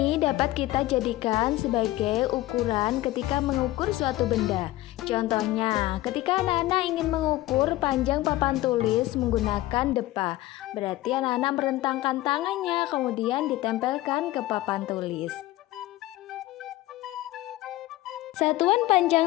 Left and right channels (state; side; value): quieter; right; 16.9 dB